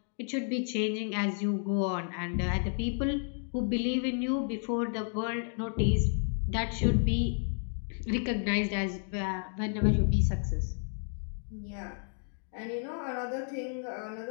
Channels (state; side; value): silent; right; 57 dB below the other